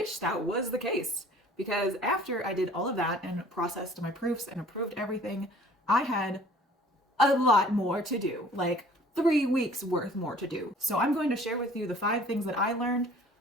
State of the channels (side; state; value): both; normal; correlation 0.51